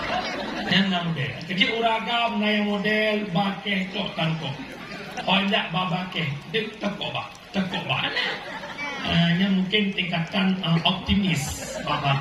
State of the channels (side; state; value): both; identical; correlation 1.00